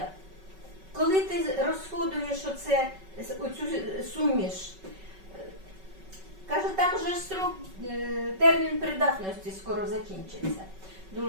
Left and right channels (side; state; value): left; late; 5.3 ms